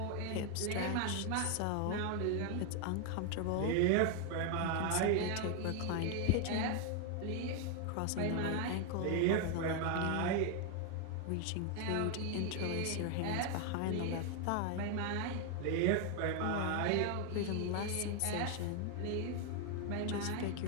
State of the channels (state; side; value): different; both; correlation 0.00